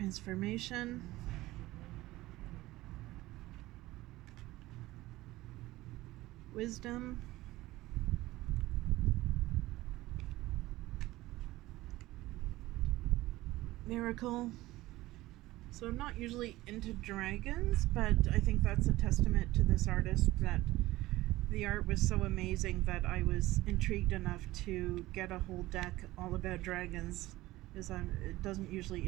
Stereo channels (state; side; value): quieter; left; 17.9 dB